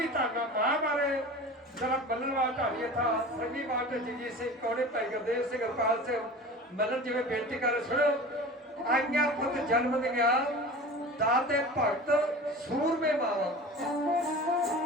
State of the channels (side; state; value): both; normal; correlation 0.36